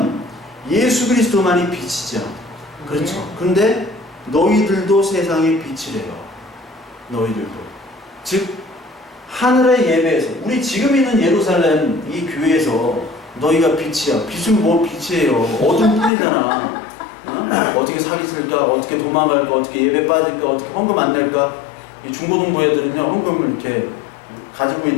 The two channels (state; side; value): drops out; right; at 16.1 s